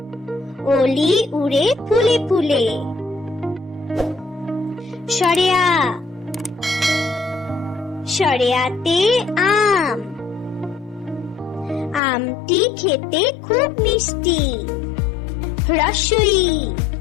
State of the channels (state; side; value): drops out; right; at 12.0 s